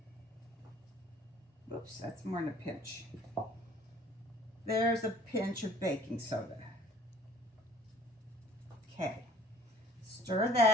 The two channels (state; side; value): normal; both; correlation 0.53